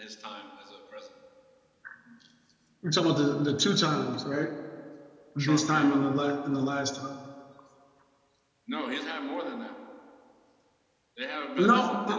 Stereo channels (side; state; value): both; identical; correlation 1.00